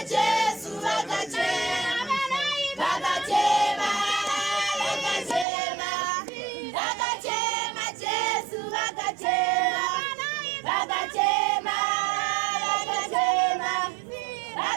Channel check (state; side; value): drops out; left; at 5.5 s